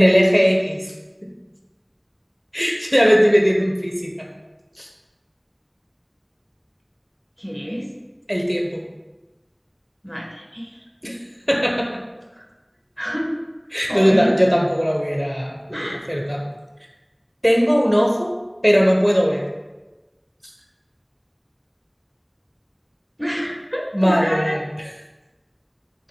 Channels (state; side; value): identical; both; correlation 1.00